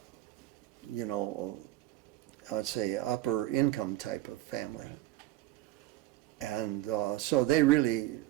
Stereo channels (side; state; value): left; quieter; 15.6 dB